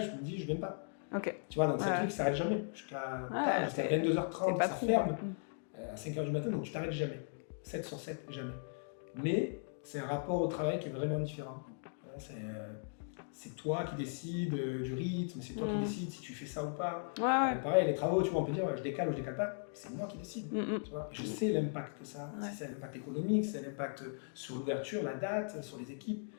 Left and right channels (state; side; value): silent; right; digital silence